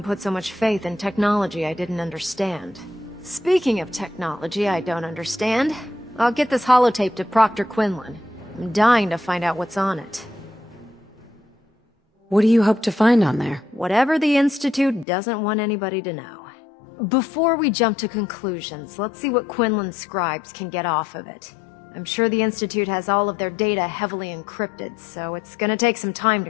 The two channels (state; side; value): drops out; right; at 15.1 s